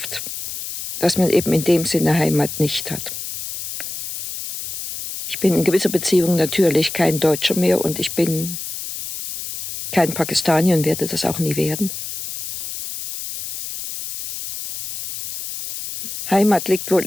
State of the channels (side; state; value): left; noise; hiss, 8 dB below the sound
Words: dass man eben in dem Sinne Heimat nicht hat. Ich bin in gewisser Beziehung natürlich kein Deutscher mehr und ich bin kein Pakistanier und werde das auch nie werden. Heimat liegt